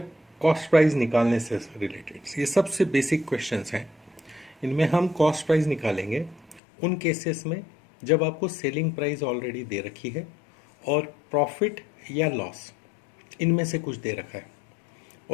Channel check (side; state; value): right; drops out; at 6.6 s